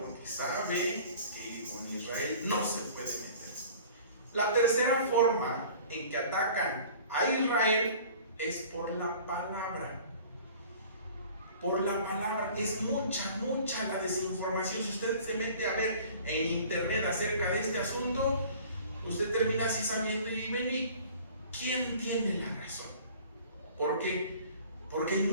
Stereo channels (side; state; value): both; inverted; correlation -0.47